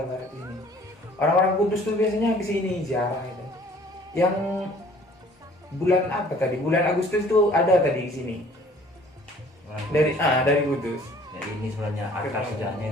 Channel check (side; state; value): both; normal; correlation 0.54